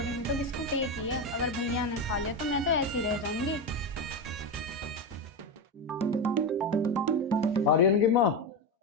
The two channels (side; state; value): both; normal; correlation 0.15